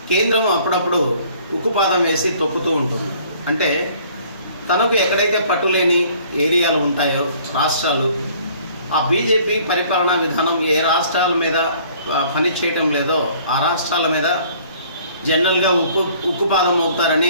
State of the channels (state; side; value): inverted; both; correlation -0.56